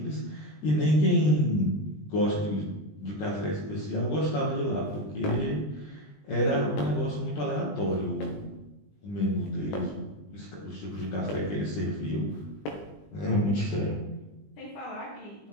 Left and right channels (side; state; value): right; late; 20 ms